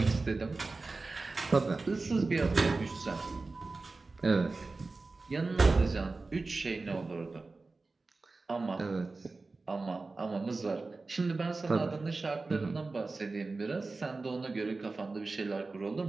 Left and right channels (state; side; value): quieter; left; 3.7 dB